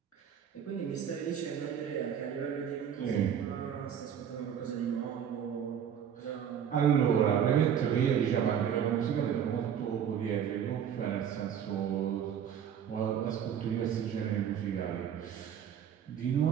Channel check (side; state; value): left; quieter; 8.6 dB